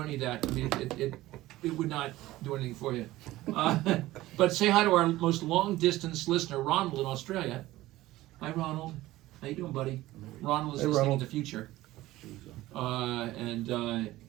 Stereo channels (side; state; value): left; quieter; 16.9 dB